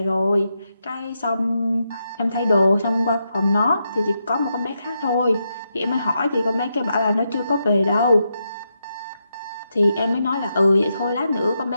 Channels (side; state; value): both; inverted; correlation -0.84